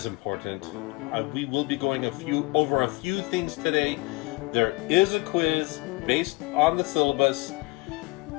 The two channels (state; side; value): quieter; right; 24.3 dB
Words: important. We will be going over a few things today. There is a quiz based on the syllabus.